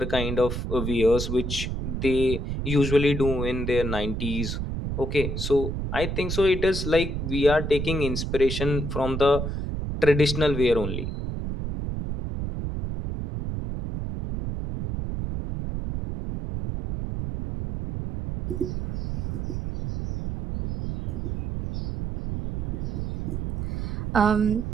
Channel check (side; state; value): right; noise; rumble, 3 dB below the sound